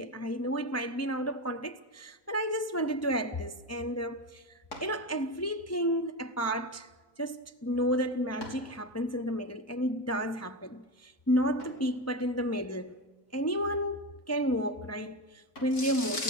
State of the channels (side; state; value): both; normal; correlation 0.18